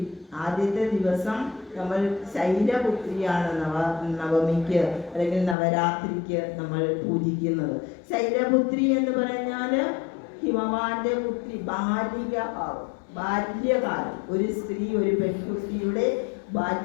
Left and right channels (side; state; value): right; drops out; at 5.6 s